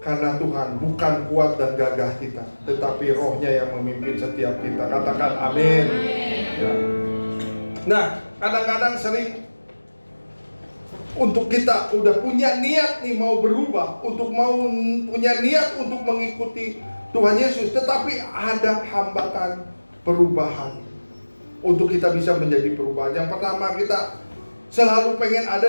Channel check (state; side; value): inverted; both; correlation -1.00